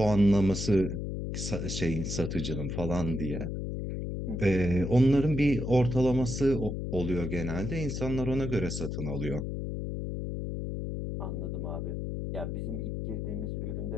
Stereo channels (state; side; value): noise; left; hum, 4 dB below the sound